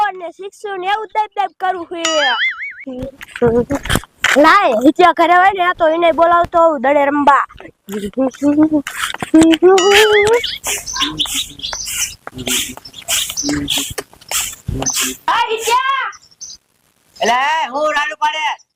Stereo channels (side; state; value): both; identical; correlation 1.00